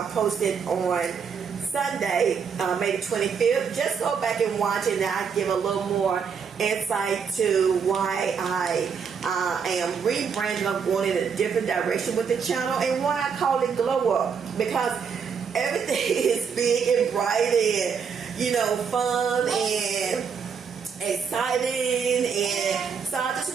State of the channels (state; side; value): quieter; left; 6.4 dB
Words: posted on Sunday, May the 25th, just go back and watch it, and I'll give a little more insight to why I am rebranding. I'm going in a different direction with the channel, and why I call it Glow Up, because everything is big and bright and, you know, fun and exciting. And so I just